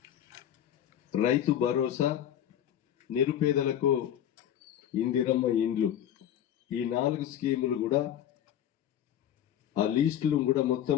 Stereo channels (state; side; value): quieter; right; 10.5 dB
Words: రైతు భరోసా, నిరుపేదలకు ఇందిరమ్మ ఇండ్లు, ఈ 4 స్కీములు కూడా ఆ లిస్టులు కూడా